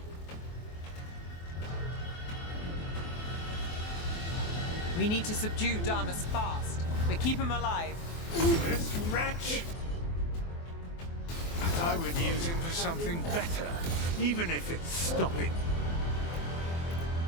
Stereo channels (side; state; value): right; late; 24 ms